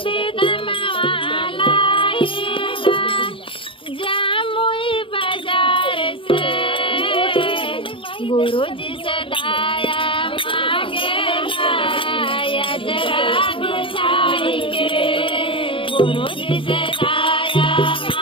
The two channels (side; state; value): right; late; 0.25 ms